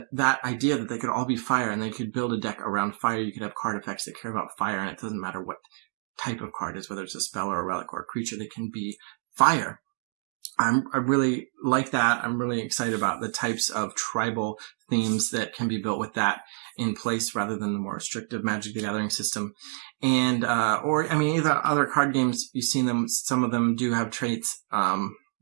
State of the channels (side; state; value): left; silent; 56 dB below the other